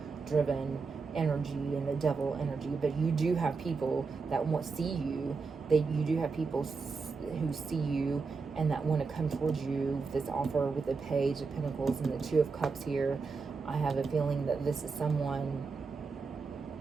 energy and the devil energy. But you do have people that see you. You do have people who see you and that want to come towards you. This offer with the Page of Pentacles and the Two of Cups here, I have a feeling that this is someone.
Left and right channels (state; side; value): quieter; left; 4.7 dB